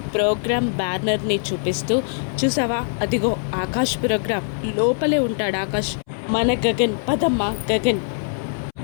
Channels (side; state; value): right; silent; 64 dB below the other